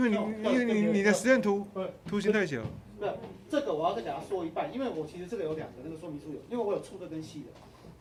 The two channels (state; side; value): identical; both; correlation 1.00